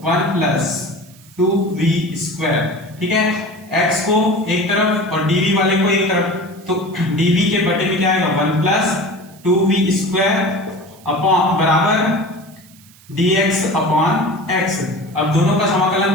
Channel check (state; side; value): noise; right; hiss, 25 dB below the sound